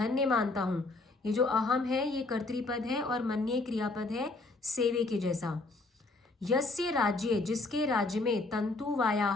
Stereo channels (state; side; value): quieter; right; 3.3 dB